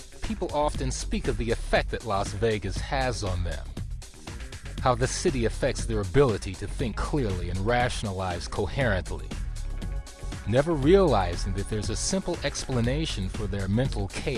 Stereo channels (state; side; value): identical; both; correlation 1.00